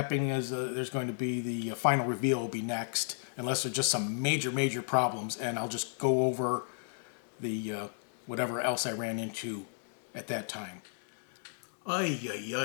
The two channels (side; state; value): right; silent; digital silence